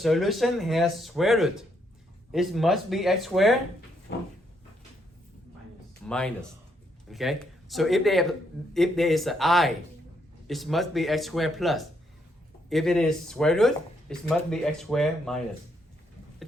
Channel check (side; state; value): both; normal; correlation 0.75